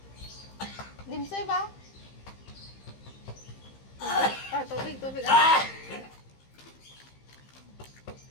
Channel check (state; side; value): late; right; 15 ms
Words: Dimsoy ba? Tubig. Tubig. Ah!